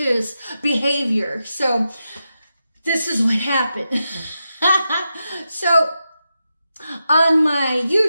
behavior. So this is what happened. So on my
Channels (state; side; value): inverted; both; correlation -0.88